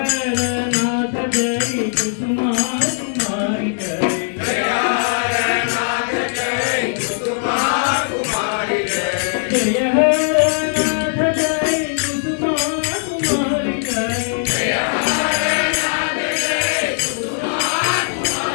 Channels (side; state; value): right; silent; 62 dB below the other